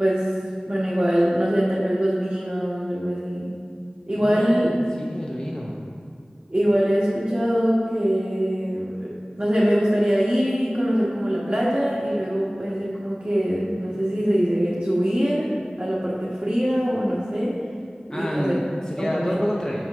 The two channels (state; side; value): normal; both; correlation 0.98